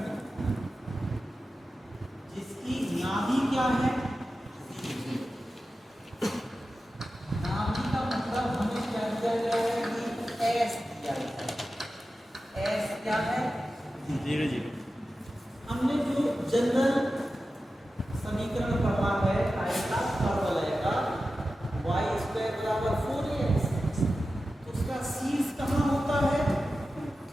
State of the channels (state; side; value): normal; both; correlation 0.93